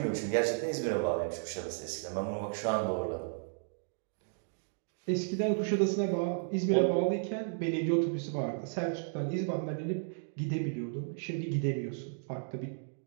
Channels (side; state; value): left; silent; digital silence